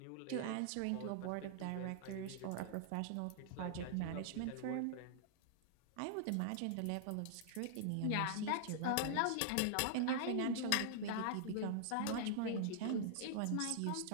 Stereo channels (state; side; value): different; both; correlation -0.01